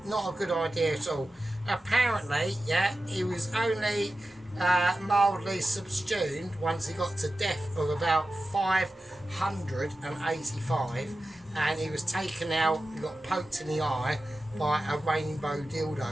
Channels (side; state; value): both; normal; correlation 0.93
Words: Not a good idea at all. Apparently, yeah, he was only mildly subsumed once he got to death of about 585, and he was taken out, he got poked in the eye by a rainbow